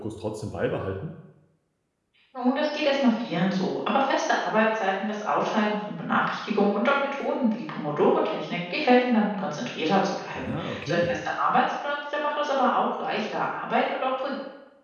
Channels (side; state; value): both; identical; correlation 1.00